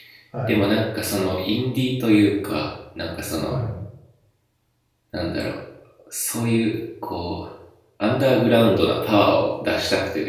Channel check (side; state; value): both; identical; correlation 1.00